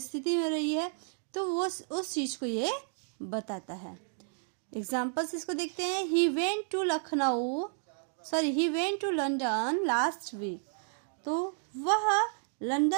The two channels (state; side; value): silent; left; digital silence